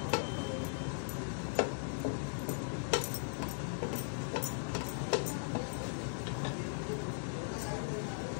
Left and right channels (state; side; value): silent; right; 52 dB below the other